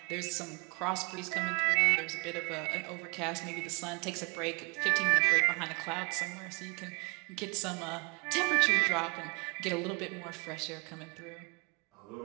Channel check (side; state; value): left; quieter; 31.5 dB